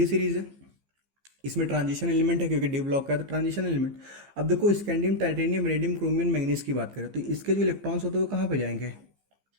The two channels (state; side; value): late; left; 15 ms